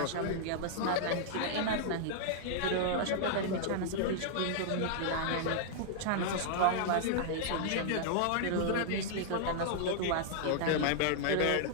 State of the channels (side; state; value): both; different; correlation -0.01